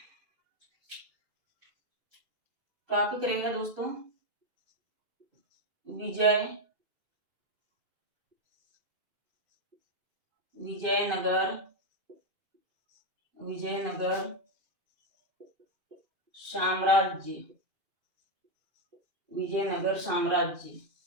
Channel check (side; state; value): left; late; 2.5 ms